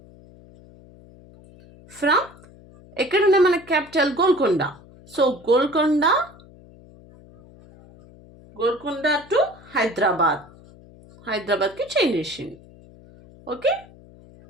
from ఎక్కడున్న మన క్యాపిటల్ గోల్కొండ. సో గోల్కొండ గోల్కొండ టు హైదరాబాద్. హైదరాబాద్కి చేంజ్ చేసింది. Okay,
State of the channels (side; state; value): left; noise; hum, 23 dB below the sound